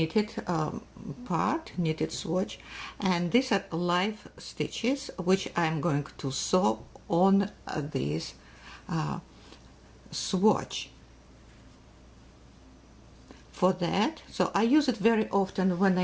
part, knitted swatch, and these are live stitches which I'm going to sew on this swatch. For that, so I use it very often when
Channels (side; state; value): both; identical; correlation 1.00